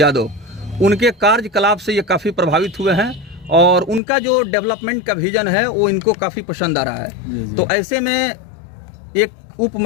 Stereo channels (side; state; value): right; drops out; at 4.0 s